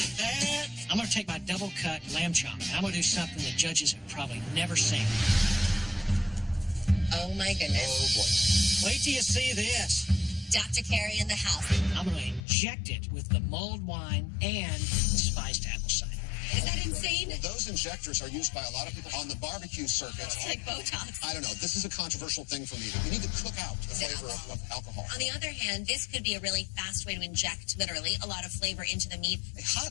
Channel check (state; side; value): drops out; right; at 12.4 s